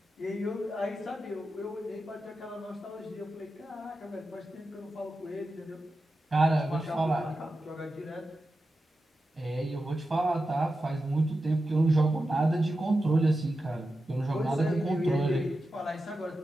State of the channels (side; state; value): both; normal; correlation 0.91